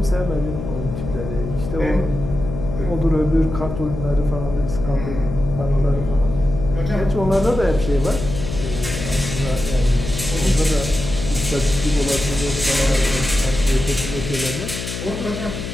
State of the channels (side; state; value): left; noise; hum, 7 dB below the sound